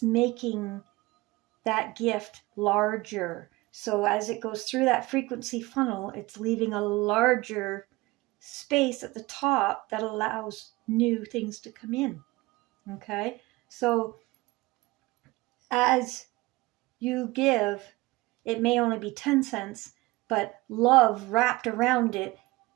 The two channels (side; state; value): left; quieter; 21.2 dB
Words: making that gift larger. So as it goes through that frequency funnel, it's leaving a larger space at the top that allows new things to come in. Okay? So as you give, it may only be 10 cents, but love wrapped around it